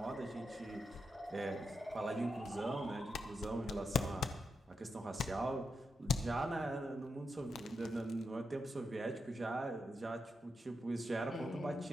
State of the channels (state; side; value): normal; both; correlation 0.85